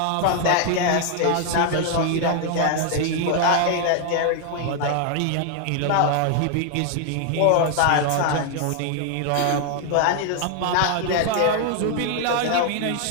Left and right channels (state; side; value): different; both; correlation 0.00